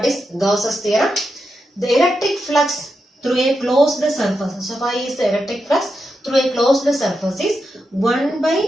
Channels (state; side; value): normal; both; correlation 0.87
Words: is Gauss's theorem. The electric flux through a closed surface. So phi is the electric flux through a closed surface is 1 by